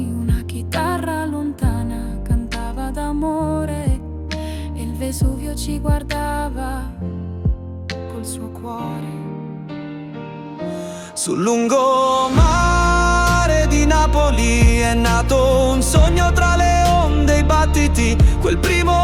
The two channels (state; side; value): identical; both; correlation 1.00